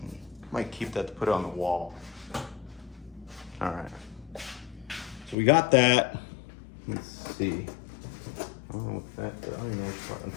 might keep that to put it on the wall. All right. So we got that. Let's see. I don't know what that. I don't even know which part.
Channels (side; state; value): right; drops out; at 5.4 s